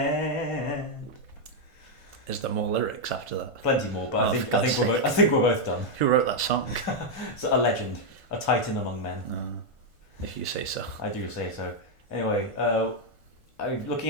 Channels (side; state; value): right; late; 1.5 ms